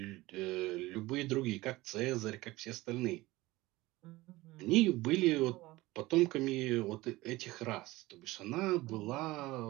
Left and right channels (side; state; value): left; quieter; 19.4 dB